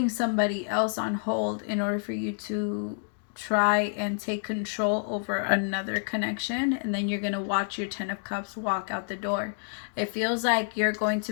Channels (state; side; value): silent; right; digital silence